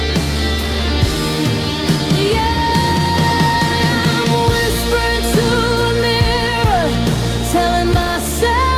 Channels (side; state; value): both; identical; correlation 1.00